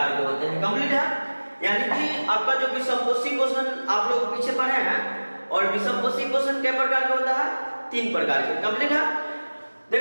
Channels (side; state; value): both; inverted; correlation -1.00